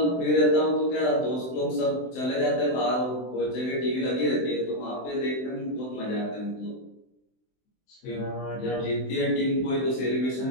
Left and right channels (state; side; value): late; right; 23 ms